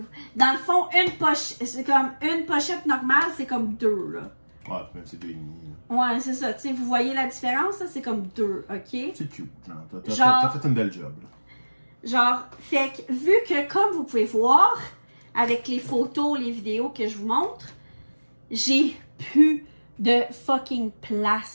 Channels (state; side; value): inverted; both; correlation -1.00